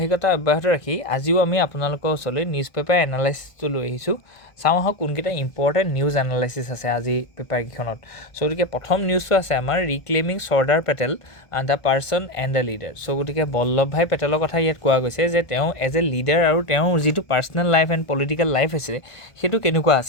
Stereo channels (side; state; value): right; late; 1.5 ms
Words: অব্যাহত ৰাখি আজিও আমি আপোনালোকৰ ওচৰলৈ নিউজ পেপাৰ এনালাইচিছটো লৈ আহিছোঁ। চাওঁ আহক কোনকেইটা ইম্পৰ্টেণ্ট নিউজ এনালাইচিছ আছে আজি পেপাৰকেইখনত। গতিকে প্ৰথম নিউজটো আছে আমাৰ reclaiming Sardar Patel the person and the leader. গতিকে বল্লভ ভাই পেটেলৰ কথা ইয়াত কোৱা গৈছে যে তেওঁ এজ এ লিডাৰ আৰু তেওঁৰ যিটো personal life and political life আছিলে সেইটো কেনেকুৱা